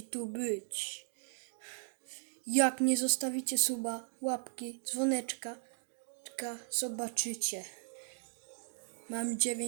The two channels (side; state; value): left; silent; digital silence